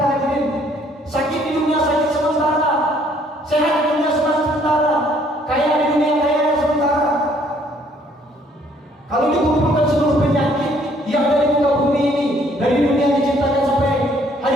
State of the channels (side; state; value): both; normal; correlation 0.63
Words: hadirin. Sakit di dunia sakit sementara, sehat di dunia sementara, kaya di dunia kaya sementara. Kalau dikumpulkan seluruh penyakit yang ada di muka bumi